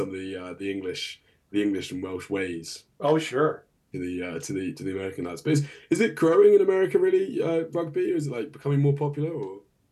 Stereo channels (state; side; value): identical; both; correlation 1.00